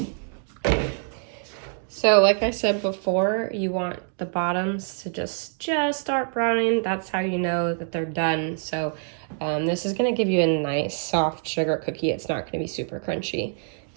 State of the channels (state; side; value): silent; left; 61 dB below the other